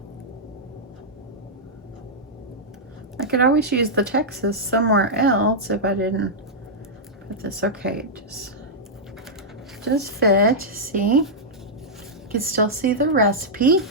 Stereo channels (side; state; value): both; normal; correlation -0.09